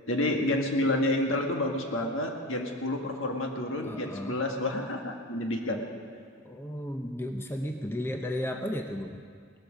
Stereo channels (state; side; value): normal; both; correlation 0.30